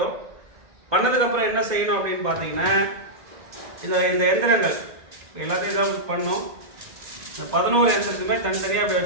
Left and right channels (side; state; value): left; late; 1.9 ms